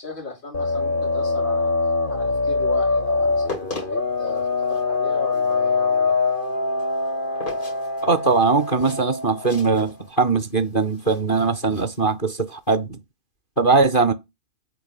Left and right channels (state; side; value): late; right; 2.5 ms